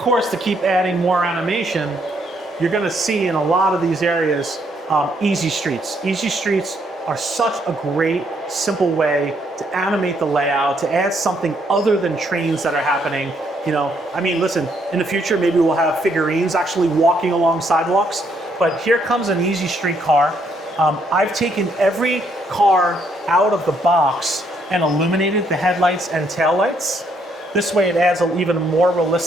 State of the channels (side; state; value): both; normal; correlation 0.72